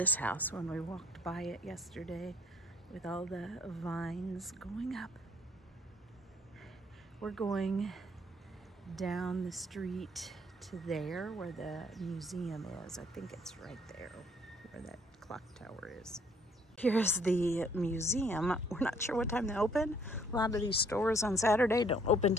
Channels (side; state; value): both; normal; correlation 0.61